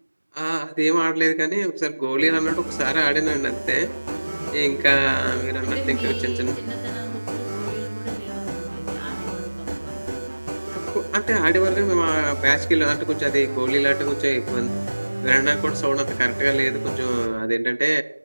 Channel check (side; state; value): both; inverted; correlation -1.00